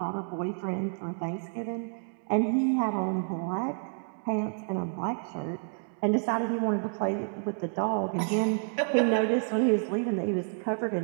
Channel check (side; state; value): left; silent; 58 dB below the other